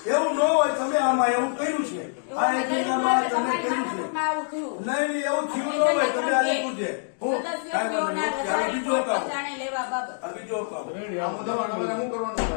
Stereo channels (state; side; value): silent; right; digital silence